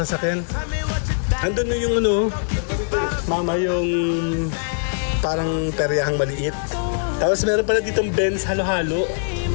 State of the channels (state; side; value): silent; right; digital silence